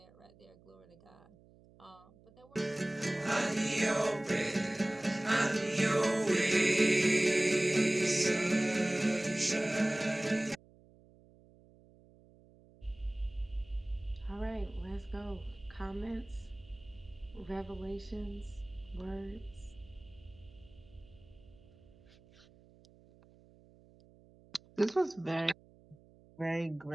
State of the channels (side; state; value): right; noise; hum, 26 dB below the sound